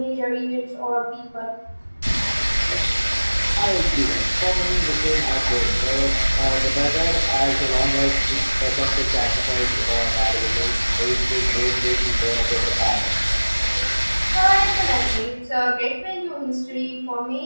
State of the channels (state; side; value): inverted; both; correlation -1.00